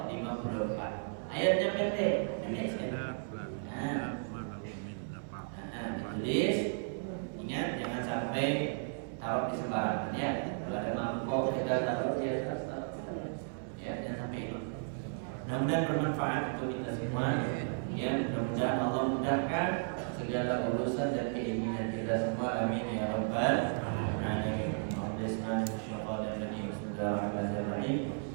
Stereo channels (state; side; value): silent; left; 55 dB below the other